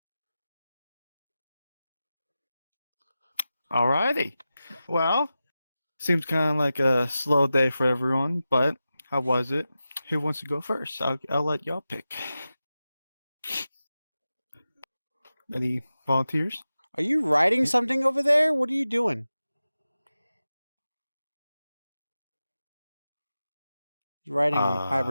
Alrighty. Well, seems kind of like a slow day for everyone, but how was it? Who wants to go first? I'll let y'all pick. Any volunteers? Are you writing something over there? What are you doing? You're writing on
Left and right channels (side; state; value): both; inverted; correlation -0.93